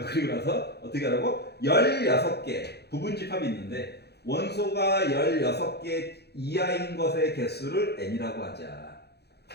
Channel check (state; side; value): late; right; 0.48 ms